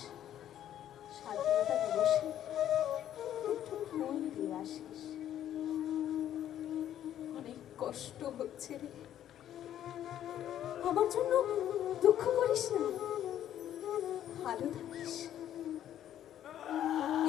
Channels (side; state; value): right; quieter; 11.2 dB